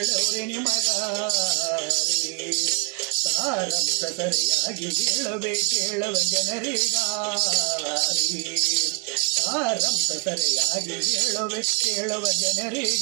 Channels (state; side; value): quieter; left; 38.2 dB